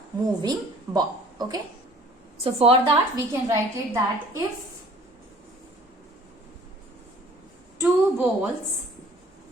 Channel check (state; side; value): normal; both; correlation 0.52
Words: moving ball. Okay, so for that we can write it that if two